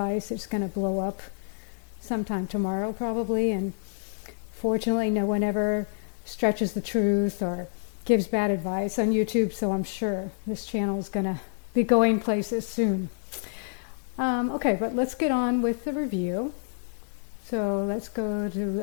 it's going to blow up sometime tomorrow probably. And fortunately no one ever stretches the truth or gives bad advice on YouTube, so I'm sure this channel is going to be going places soon. Okay, but let's get on with the review. So let's go to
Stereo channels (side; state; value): right; silent; digital silence